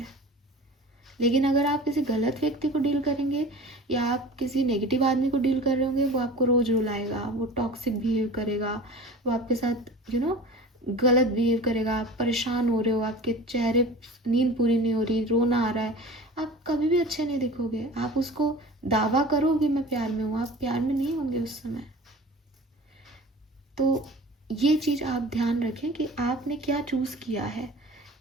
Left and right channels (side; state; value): both; normal; correlation 0.39